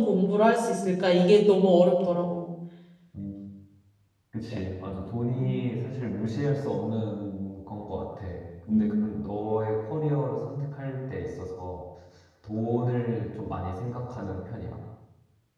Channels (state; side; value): identical; both; correlation 1.00